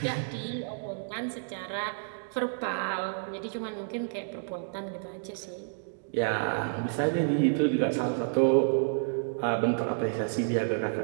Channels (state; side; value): silent; left; digital silence